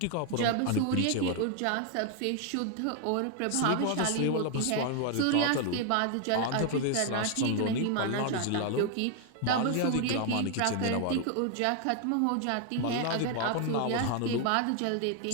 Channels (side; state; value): both; different; correlation 0.00